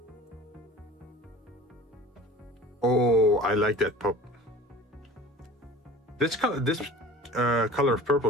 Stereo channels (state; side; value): normal; both; correlation 0.42